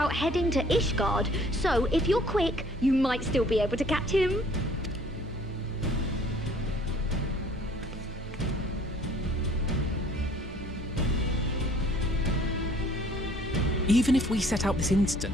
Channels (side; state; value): both; normal; correlation 0.56